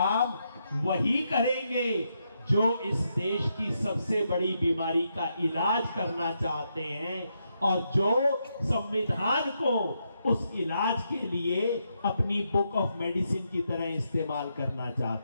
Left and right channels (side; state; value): both; inverted; correlation -0.81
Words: वही करेंगे जो इस देश की सबसे बड़ी बीमारी का इलाज करना चाहते हैं और जो संविधान को उस इलाज के लिए अपनी बुक ऑफ मेडिसिन की तरह इस्तेमाल करना